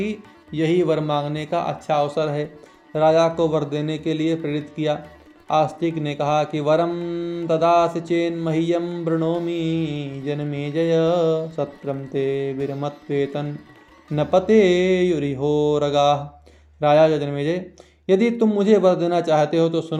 यही वर मांगने का अच्छा अवसर है। राजा को वर देने के लिए प्रेरित किया। आस्तिक ने कहा कि वरम ददासि चेन मह्यम वृणोमि जनमेजय सत्रम ते विरमत्वेतन न पते युरिहोरगा। राजा जनमेजय, यदि तुम मुझे वर देना चाहते हो तो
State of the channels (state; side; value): identical; both; correlation 1.00